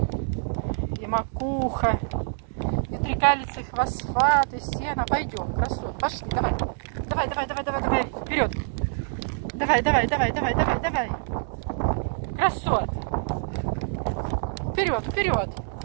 и макуха, и трикалицы, фосфат, и сено. Пойдем, красот. Пошли, давай. Давай, давай, давай, давай, давай. Вперед. Давай, давай, давай, давай, давай, давай. Красот. Вперед, вперед.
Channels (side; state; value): left; silent; digital silence